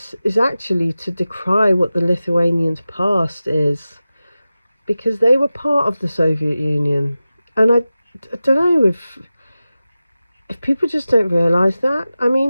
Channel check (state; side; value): inverted; both; correlation -0.95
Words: actually to decry what the Lithuanians' past is, because they were part of the Soviet Union. And I don't know if people just don't realise that. I